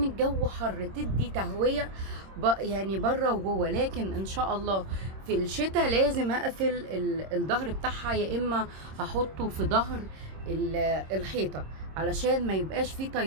الجو حر تدي تهوية يعني بره وجوه، لكن ان شاء الله في الشتاء لازم اقفل الظهر بتاعها، يا اما هحطه في ظهر الحيطة علشان ما يبقاش فيه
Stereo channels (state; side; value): late; left; 26 ms